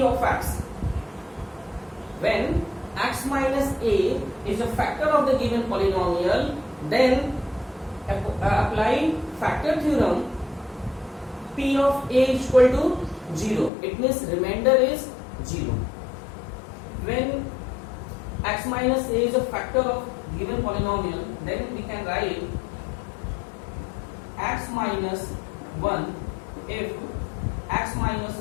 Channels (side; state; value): right; drops out; at 13.7 s